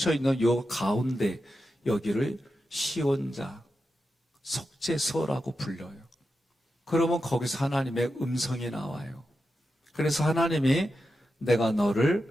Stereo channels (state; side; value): normal; both; correlation 0.89